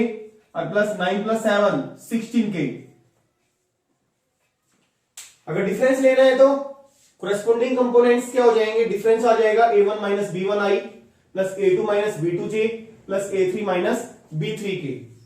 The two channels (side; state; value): both; identical; correlation 1.00